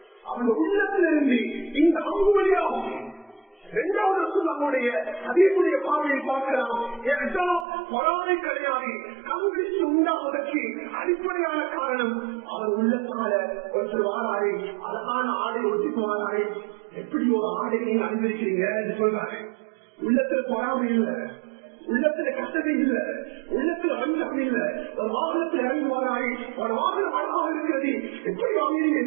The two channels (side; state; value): left; drops out; at 7.7 s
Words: அவன் உள்ளத்திலிருந்து இந்த அம்பு வழியாகும். 2வது நம்முடைய அதீபுடைய பார்வையை பார்க்கலாம். பொறாமை கிடையாது, கண்பிடிச்சு உண்டாவதற்கு அடிப்படையான காரணம் அவர் உள்ளத்தால ஒரு வாராரு அழகான ஆடை ஒட்டிக்கு வாராரு. எப்படி ஒரு ஆடை நீங்க அனுபவிக்கிறீங்க என்று சொல்றாரு. உள்ளத்துல பொறாமை இல்லை, உள்ளத்துல கஷ்டத்தை இல்லை, உள்ளத்துல வஞ்சகம் இல்லை. ஒரு வாகனத்தில் இறங்கி வாராரு, ஒரு வாகனம் அழகாக இருக்கிறது, எப்படி வாங்கினீங்க?